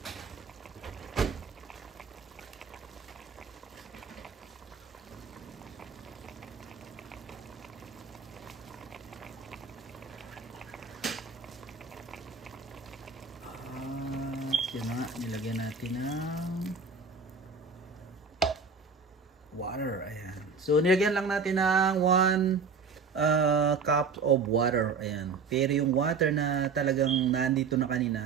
Yan na nga, nilagyan natin ng water. Ayan. So nilagyan lang natin ng 1 cup of water. Ayan. Pero yung water na talagang nandito na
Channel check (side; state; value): left; quieter; 5.0 dB